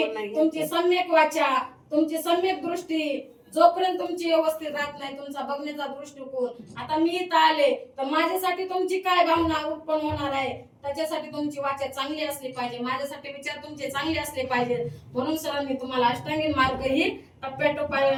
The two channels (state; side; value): identical; both; correlation 1.00